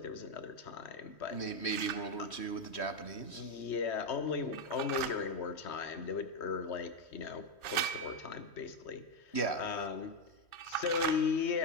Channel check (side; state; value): right; late; 3.1 ms